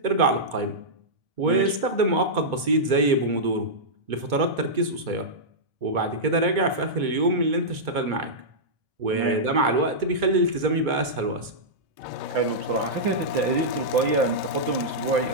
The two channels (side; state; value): left; late; 2.2 ms